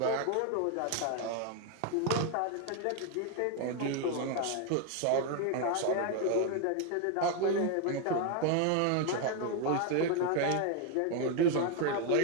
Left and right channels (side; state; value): both; different; correlation 0.01